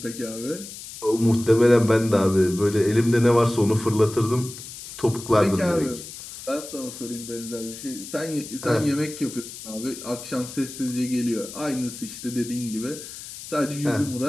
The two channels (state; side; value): noise; left; hiss, 13 dB below the sound